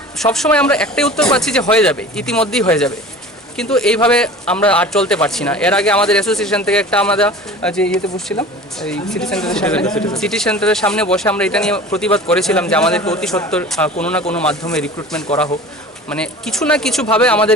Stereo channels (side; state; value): both; normal; correlation 0.39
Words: সবসময় আমরা একটাই উত্তর পাচ্ছি যে হয়ে যাবে ইতিমধ্যেই হয়ে যাবে কিন্তু এইভাবে আমরা আর চলতে পারছি না এর আগে আমাদের অ্যাসোসিয়েশন থেকে একটা আমরা যে ইয়েতে বসছিলাম এই সিটি সেন্টারের সামনে বসে আমরা এটা নিয়ে প্রতিবাদ করেছিলাম যে আমাদেরকে অতি সত্বর কোনো না কোনো মাধ্যমে রিক্রুটমেন্ট করা হোক মানে কিছু না কিছুভাবে